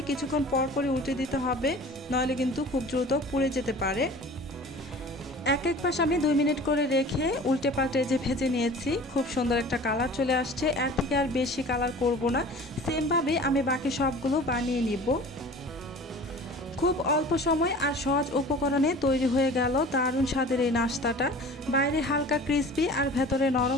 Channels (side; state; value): both; normal; correlation 0.42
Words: কিছুক্ষণ পর পরই উল্টে দিতে হবে, নইলে কিন্তু খুব দ্রুত পুড়ে যেতে পারে। এক পাশ আমি 2 মিনিট করে রেখে উল্টে পাল্টে যে ভেজে নিয়েছি, খুব সুন্দর একটা কালার চলে আসছে। এর থেকে আর বেশি কালার করব না, সেমভাবে আমি বাকি সবগুলো বানিয়ে নিব। খুব অল্প সময় আর সহজ উপকরণে তৈরি হয়ে গেল দারুণ স্বাদের এই নাস্তাটা। বাইরে হালকা ক্রিসপি আর ভেতরে